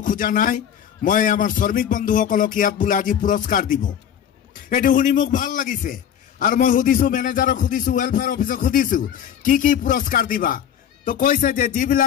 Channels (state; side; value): quieter; right; 9.2 dB